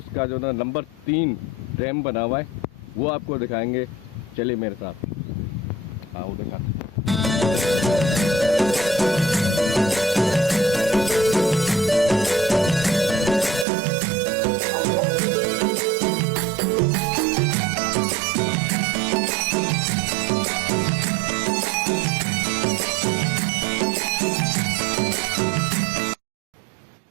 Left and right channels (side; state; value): left; drops out; at 13.7 s